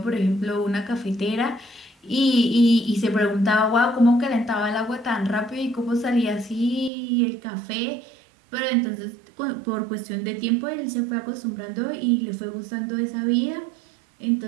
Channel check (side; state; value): left; drops out; at 6.9 s